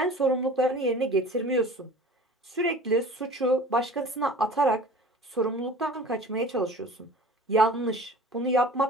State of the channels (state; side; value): normal; both; correlation 0.43